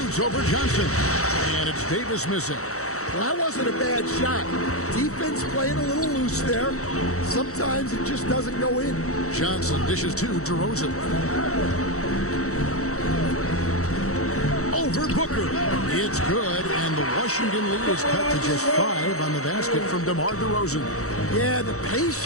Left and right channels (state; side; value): late; right; 0.64 ms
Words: over Johnson. And it's Davis missing. Well, that wasn't a bad shot. Defense playing a little loose there. Sometimes it just doesn't go in. Johnson dishes to DeRozan. Over Booker. It's good, and the Washington lead is cut to just 5 on the basket from DeMar DeRozan. Yeah, the